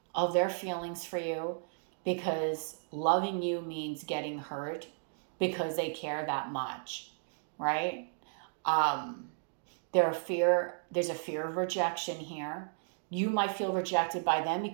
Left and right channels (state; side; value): silent; left; digital silence